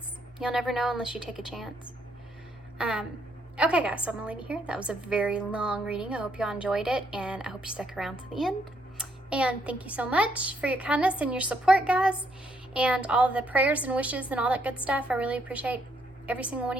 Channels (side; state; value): both; normal; correlation 0.73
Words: You'll never know unless you take a chance. Okay, guys, so I'm going to leave you here. That was a very long reading. I hope y'all enjoyed it, and I hope you stuck around to the end. And thank you so much for your kindness and your support, guys, and all the prayers and wishes and all that good stuff. I really appreciate every single one